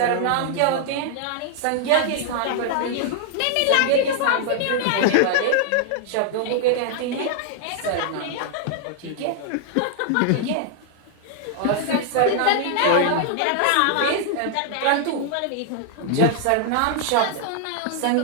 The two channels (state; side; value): different; both; correlation -0.01